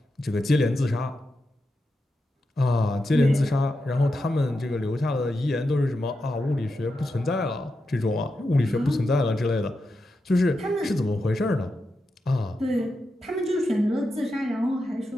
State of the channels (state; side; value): normal; both; correlation 0.88